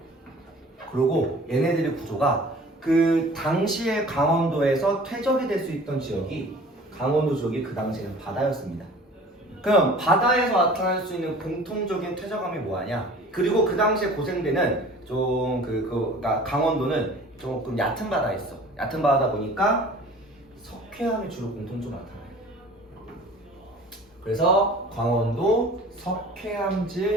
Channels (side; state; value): both; normal; correlation 0.46